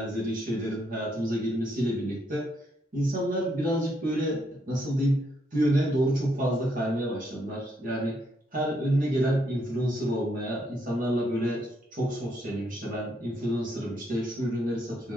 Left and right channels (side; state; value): both; normal; correlation 0.75